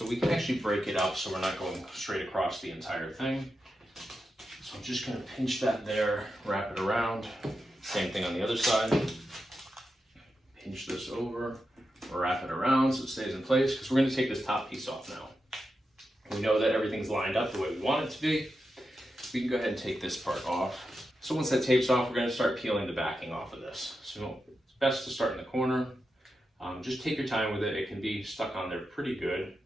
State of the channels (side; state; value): both; normal; correlation 0.88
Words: we can actually break it up so we're not going straight across the entire thing. So I'm just going to pinch that there, wrap it around. Same thing on the other side. Pinch this over, wrap it around so it stays in place, because we're going to take this top piece off now. We know that everything's lined up the way we want it to be. We can go ahead and take this part off. So once that tape's off, we're going to start peeling the backing off of this. So it's best to start in the corner. Just take your time with it. It can be stuck on there pretty good.